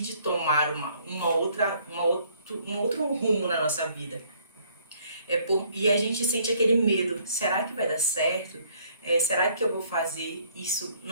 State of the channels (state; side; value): inverted; both; correlation -0.63